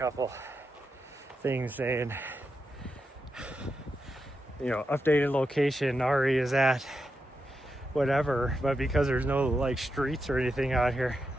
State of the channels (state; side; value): normal; both; correlation 0.86